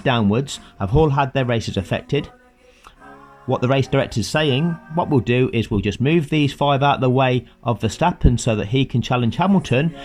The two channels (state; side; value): identical; both; correlation 1.00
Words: have all had their races affected. What the race director is saying, what we'll do is we'll just move these 5 out of the way of Verstappen so that he can challenge Hamilton.